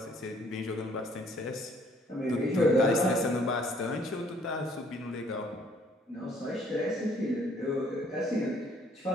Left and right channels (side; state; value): both; normal; correlation 0.62